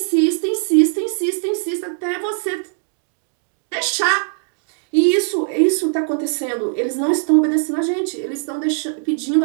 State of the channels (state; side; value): silent; left; digital silence